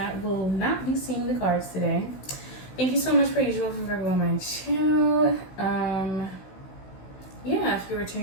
will not be seeing the cards today. Thank you so much per usual for Virgo on my channel. Yeah, if you're a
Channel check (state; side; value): late; right; 16 ms